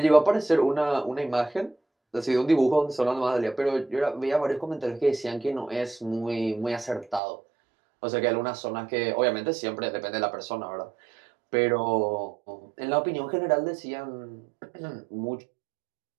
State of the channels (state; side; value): drops out; left; at 7.2 s